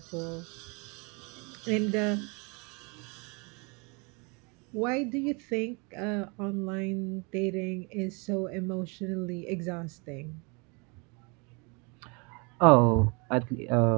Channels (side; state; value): left; quieter; 31.5 dB